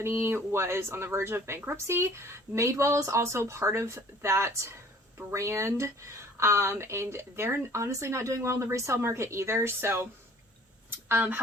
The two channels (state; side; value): normal; both; correlation 0.52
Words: was on the verge of bankruptcy. Madewell is also part of that brand, and they're honestly not doing well in the resale market either. So